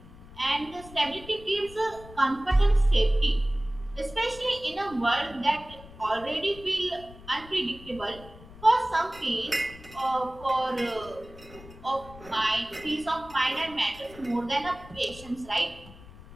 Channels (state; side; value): noise; left; rumble, 19 dB below the sound